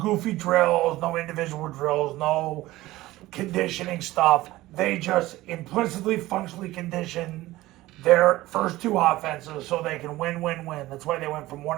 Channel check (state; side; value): quieter; left; 17.4 dB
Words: drills, no individual drills, no conditioning stuff. They just implicitly, functionally condition their first 2 offenses so they can win. That's why they went from